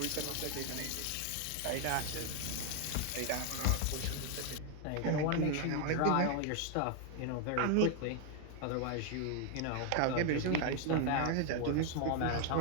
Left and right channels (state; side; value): different; both; correlation 0.01